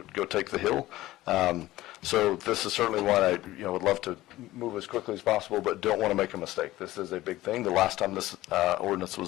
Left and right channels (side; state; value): right; quieter; 16.5 dB